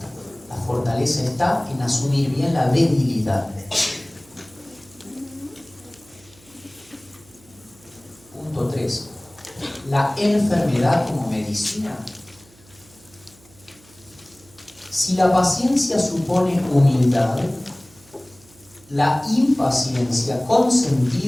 La fortaleza está en asumir bien la debilidad. Punto 3. La enfermedad como medicina. Si la paciencia supone humildad, la impaciencia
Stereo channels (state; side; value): noise; right; hum, 27 dB below the sound